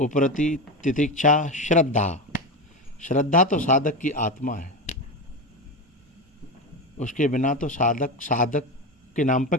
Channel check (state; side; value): normal; both; correlation 0.18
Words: तितिक्षा श्रद्धा। श्रद्धा तो साधक की आत्मा है, उसके बिना तो साधक के नाम पे